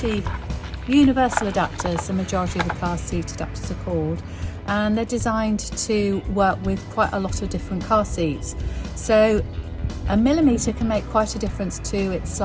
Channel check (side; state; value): both; identical; correlation 1.00